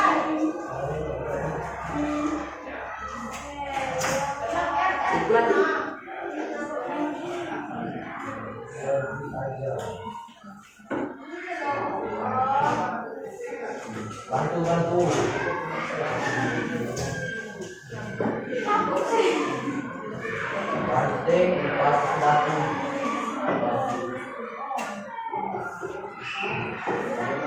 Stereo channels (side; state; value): both; identical; correlation 1.00